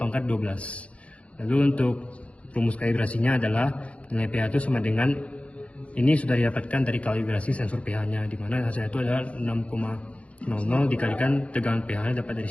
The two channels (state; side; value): late; right; 0.063 ms